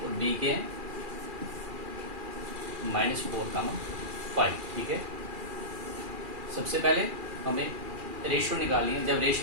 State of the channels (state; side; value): late; left; 2.4 ms